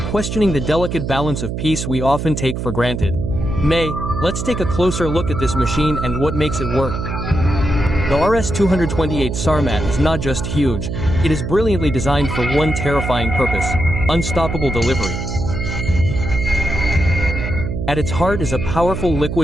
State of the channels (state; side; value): noise; right; hum, 4 dB below the sound